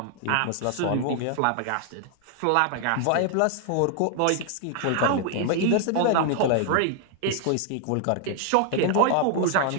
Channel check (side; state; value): both; different; correlation 0.00